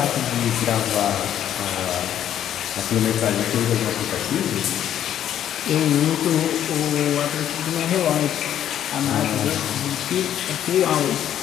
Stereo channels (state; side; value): quieter; right; 10.6 dB